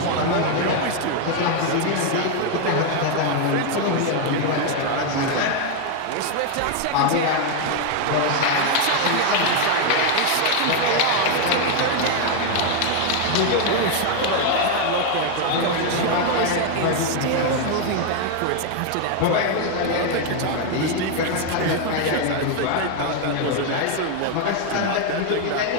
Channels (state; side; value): different; both; correlation 0.01